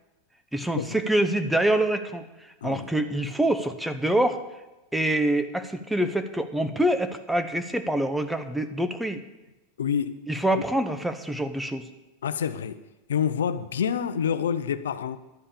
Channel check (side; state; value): both; normal; correlation 0.53